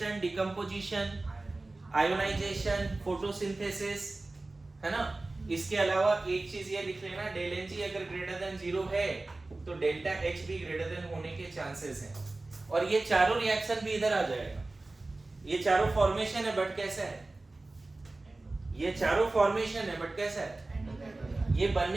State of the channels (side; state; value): left; quieter; 3.1 dB